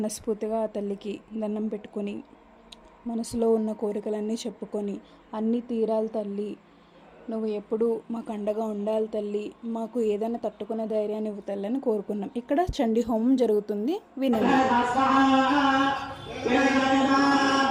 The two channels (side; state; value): both; identical; correlation 1.00